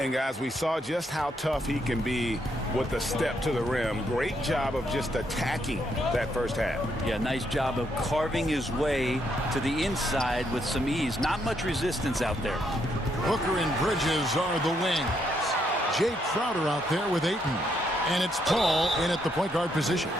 guys, we saw just how tough he can be with a step to the rim. Great job of just attacking that first half. Yeah, nice job of carving his way to the inside with some ease. Not much resistance out there. Hooker and Bridges are the wings. Jay Crowder out there with Ayton. And it's Paul in at the point guard position.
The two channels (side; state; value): both; normal; correlation 0.75